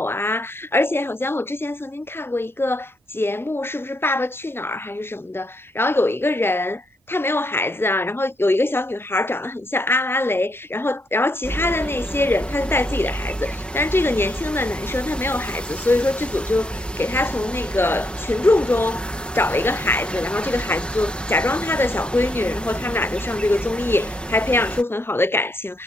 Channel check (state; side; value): normal; both; correlation 0.77